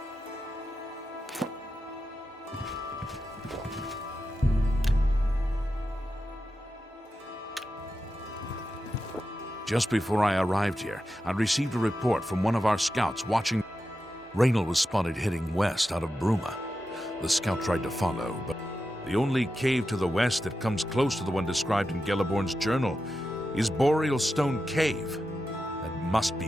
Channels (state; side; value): normal; both; correlation 0.90